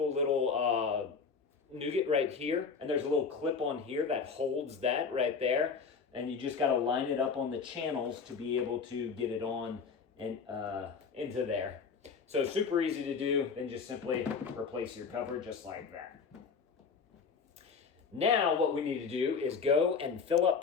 little nougat right here. And there's a little clip on here that holds that right there. And you just got to line it up on the channels to be able to get it on and into there. So super easy to do. Then just simply replace your cover just like that. Now what we need to do is go and fill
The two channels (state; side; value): quieter; right; 5.5 dB